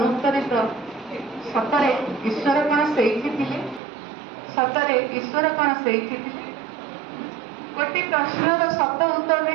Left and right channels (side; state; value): left; drops out; at 3.8 s